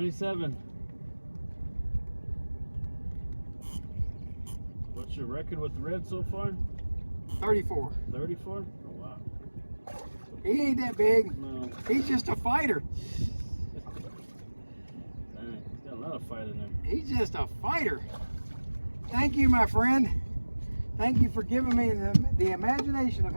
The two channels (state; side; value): inverted; both; correlation -1.00